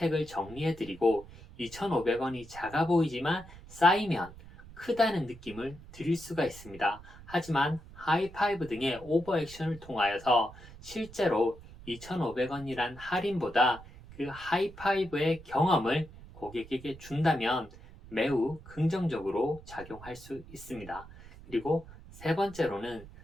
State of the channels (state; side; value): noise; right; rumble, 18 dB below the sound